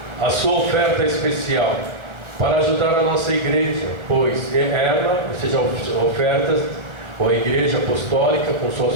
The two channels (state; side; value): late; left; 1.3 ms